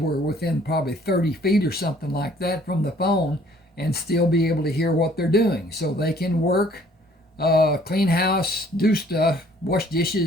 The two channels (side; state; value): both; normal; correlation 0.58